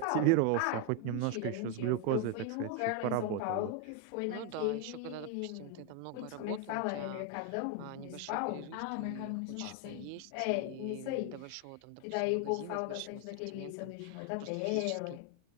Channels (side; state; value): both; different; correlation 0.01